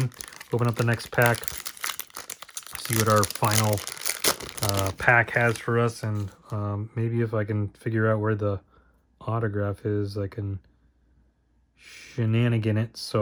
Open up the next pack. See what our final pack has for us, and maybe if I can figure out where the autograph is, I can shenanigan it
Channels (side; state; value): both; identical; correlation 1.00